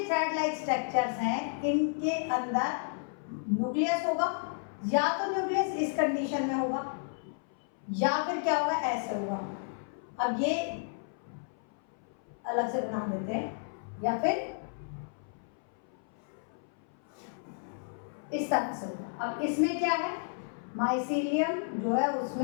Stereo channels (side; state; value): right; silent; 56 dB below the other